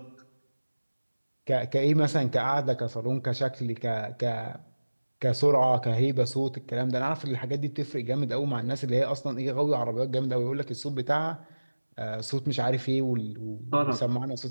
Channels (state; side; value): inverted; both; correlation -1.00